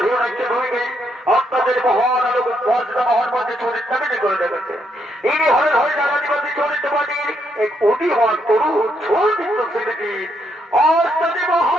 হিরণাক্য ভূমিকে আপনাদের মহান আলোক মর্যাদা মহান মধ্যে চরিত্র মেনে করে দেখেছে। ইনি হলেন হরিদাবাদী চরিত্র পার্টির এক অতিমান তরুণ চরিত্র শিল্পী অষ্টাদী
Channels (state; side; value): normal; both; correlation 0.76